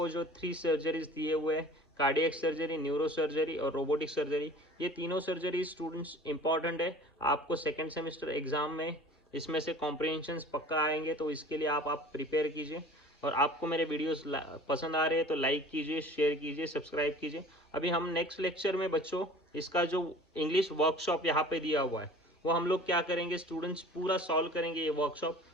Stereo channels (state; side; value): normal; both; correlation 0.45